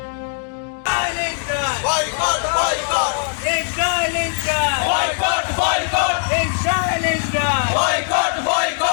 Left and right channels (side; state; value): right; silent; digital silence